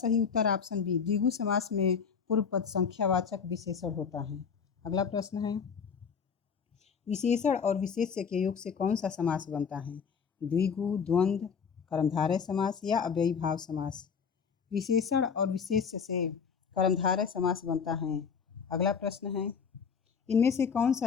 उत्तर ऑप्शन बी, द्विगु समास में पूर्व पद संख्यावाचक विशेषण होता है। अगला प्रश्न है, विशेषण और विशेष्य के योग से कौन सा समास बनता है? द्विगु, द्वंद्व, कर्मधारय समास या अव्ययी भाव समास। विशेषण और विशेष्य से कर्मधारय समास बनता है। अगला प्रश्न है, इनमें से कौन सा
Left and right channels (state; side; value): quieter; right; 6.3 dB